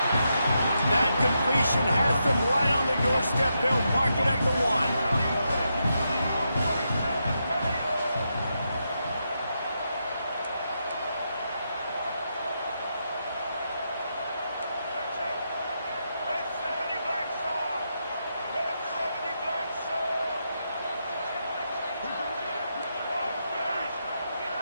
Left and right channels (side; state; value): both; inverted; correlation -0.84